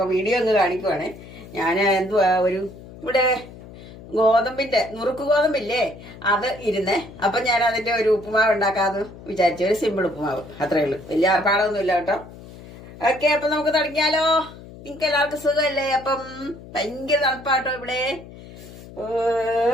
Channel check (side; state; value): left; noise; hum, 17 dB below the sound